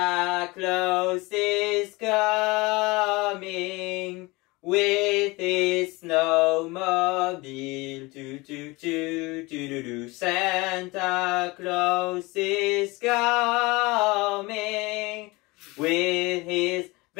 Claus is coming with his snowmobile. Toot toot toot toot toot. Santa Claus is coming with his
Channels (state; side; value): quieter; right; 23.5 dB